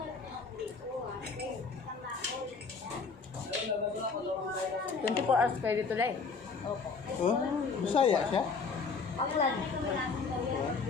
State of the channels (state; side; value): quieter; right; 4.8 dB